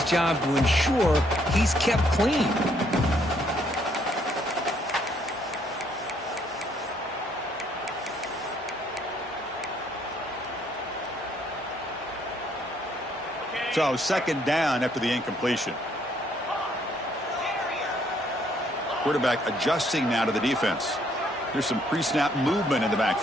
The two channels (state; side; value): normal; both; correlation 0.68